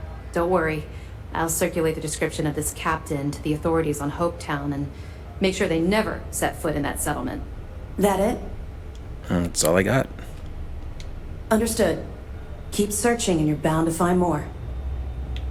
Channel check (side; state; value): both; identical; correlation 1.00